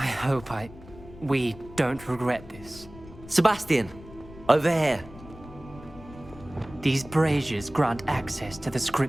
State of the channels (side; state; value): left; noise; rumble, 18 dB below the sound